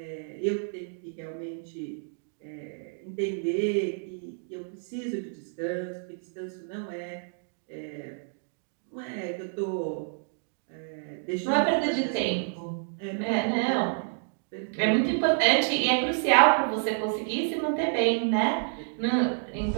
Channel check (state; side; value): silent; left; digital silence